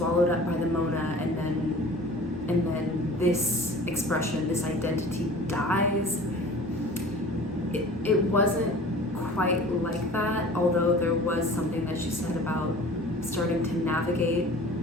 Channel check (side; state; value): both; normal; correlation 0.43